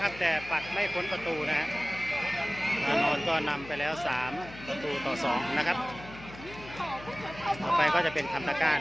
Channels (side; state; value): left; noise; hum, 16 dB below the sound